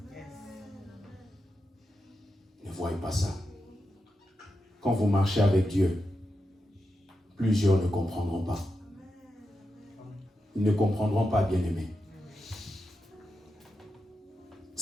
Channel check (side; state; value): both; normal; correlation 0.88